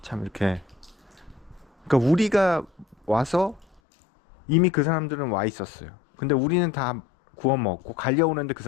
참 이렇게, 그러니까 우리가 와서 이미 그 사람들은 와 있었어요. 근데 우리는 다 구워 먹고 갈려오는데 그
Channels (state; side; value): drops out; right; at 3.8 s